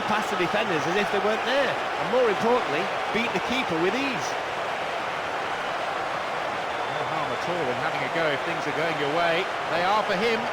past the defenders as if they weren't there, and more importantly, beat the keeper with ease. No harm at all in having a go if things are going your way. They are for him,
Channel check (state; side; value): identical; both; correlation 1.00